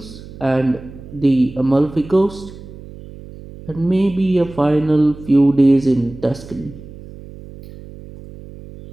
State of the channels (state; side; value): noise; right; hum, 16 dB below the sound